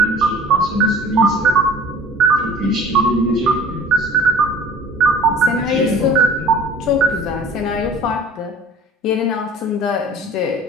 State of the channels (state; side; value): normal; both; correlation 0.47